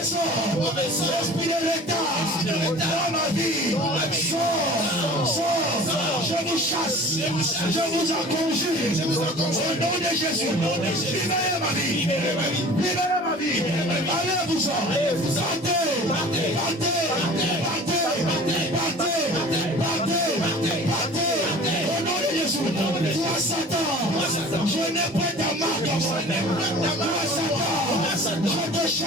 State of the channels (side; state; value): both; normal; correlation 0.43